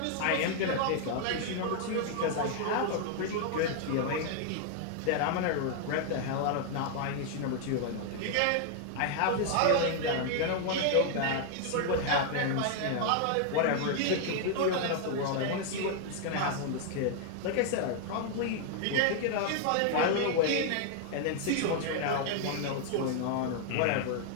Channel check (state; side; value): different; both; correlation 0.00